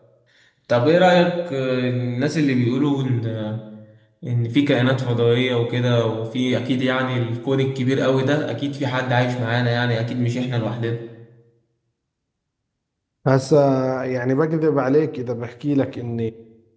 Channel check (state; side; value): identical; both; correlation 1.00